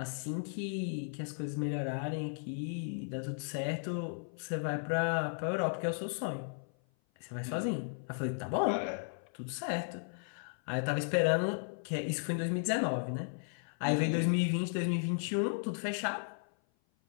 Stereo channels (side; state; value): right; silent; 54 dB below the other